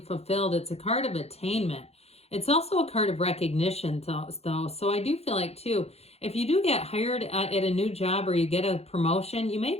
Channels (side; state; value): right; late; 0.30 ms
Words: fulfilled. It's a card of attainment. It's also a card of recognition, though. So I do feel like, too, if you do get hired at a new job or you get a promotion, you may